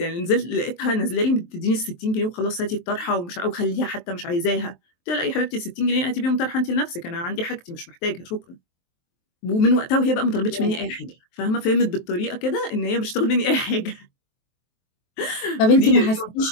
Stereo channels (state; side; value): late; right; 23 ms